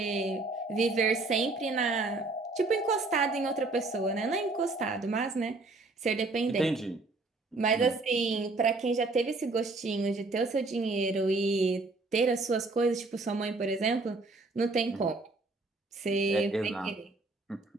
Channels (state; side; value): quieter; left; 3.4 dB